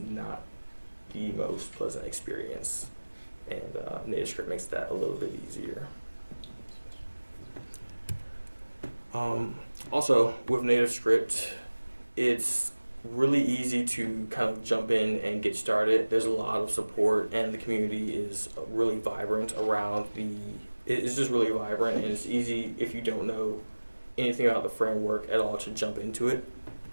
the most pleasant experience. And NativeScript makes that a little bit easier. Also, with NativeScript, it's really easy to kind of jump in and get started. There's a lot of support, and the community is really vibrant around it's just really vibrant, and it's easy if you don't know anything about the framework at all to jump into it.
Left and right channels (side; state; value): both; inverted; correlation -1.00